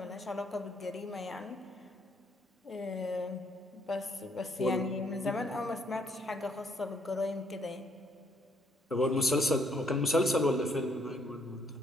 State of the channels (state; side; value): normal; both; correlation 0.68